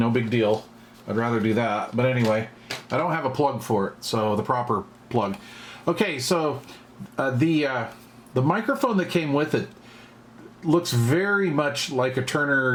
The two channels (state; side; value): identical; both; correlation 1.00